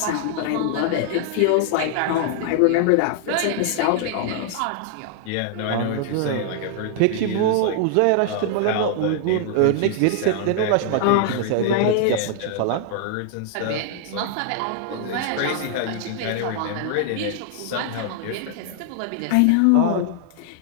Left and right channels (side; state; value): both; different; correlation -0.01